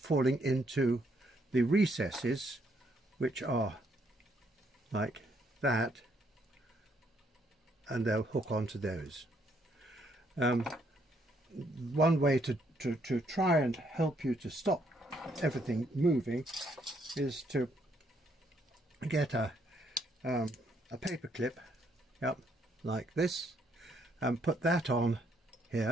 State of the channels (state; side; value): normal; both; correlation 0.71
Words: into the recesses, which are like that, and they'll hook onto those. One way to try and help you to stop everything moving is to get a paper clip, yep, like this, and put that on